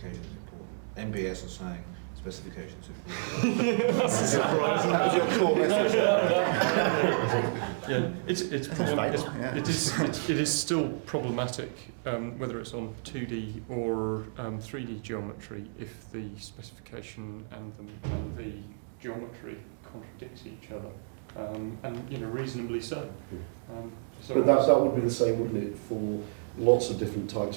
is important. MBS are saying specifications. That was your core message. Yeah, it's it is still problematic whether it's on 2D or 3D geometry if the specification and the geometry contradict each other, and reasonably so. So But that would be the same, wouldn't it, for lots of different types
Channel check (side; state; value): left; silent; digital silence